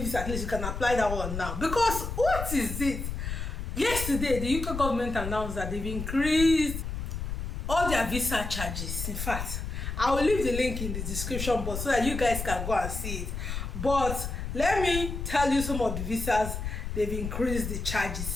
at least you can apply that one now. Because what is it? Yesterday, the UK government announced that they've increased all their visa charges. In fact, I will leave the link in the description box so that you guys can go and see it. But let me tell you some of the visas they've increased the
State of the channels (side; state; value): left; noise; rumble, 5 dB below the sound